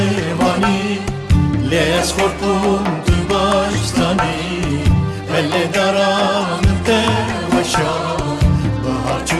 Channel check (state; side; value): identical; both; correlation 1.00